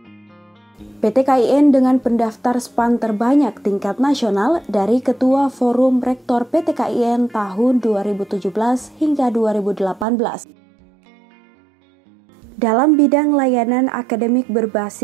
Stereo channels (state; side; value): drops out; left; at 10.1 s